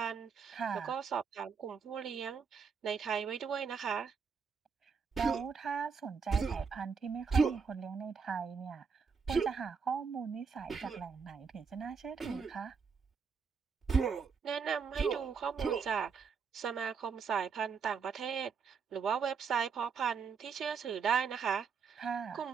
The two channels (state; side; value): quieter; left; 5.8 dB